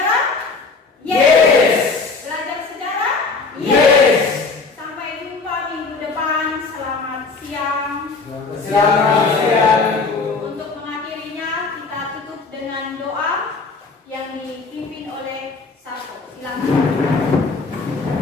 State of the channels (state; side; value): quieter; right; 4.2 dB